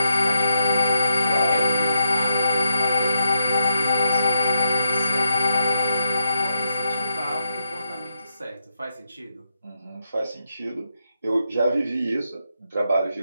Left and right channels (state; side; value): inverted; both; correlation -0.83